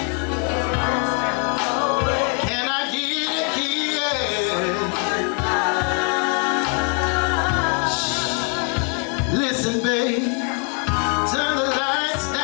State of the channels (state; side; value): quieter; right; 39.7 dB